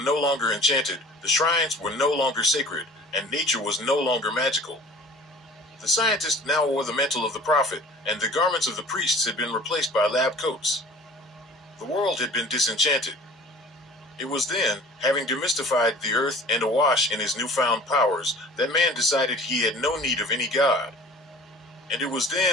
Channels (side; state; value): both; normal; correlation 0.45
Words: no longer enchanted, the shrines were no longer sacred, and nature was no longer magical. The scientist now wore the mantle of the prophet, and the garments of the priests had been replaced by lab coats. The world had been disenchanted. It was then, having demystified the earth and awash in his newfound powers, that man decided he had no need of any god. And it was